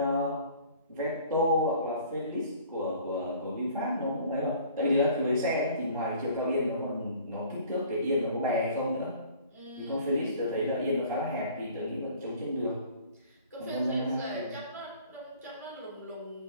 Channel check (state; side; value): inverted; both; correlation -0.51